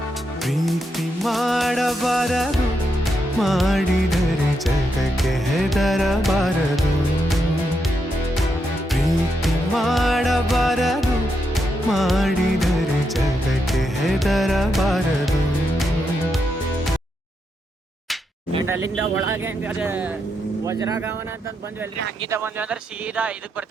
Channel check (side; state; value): both; normal; correlation 0.82